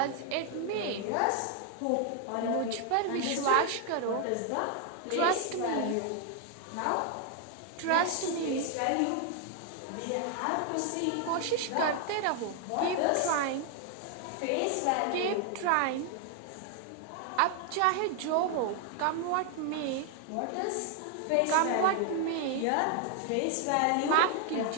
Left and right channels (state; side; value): different; both; correlation 0.00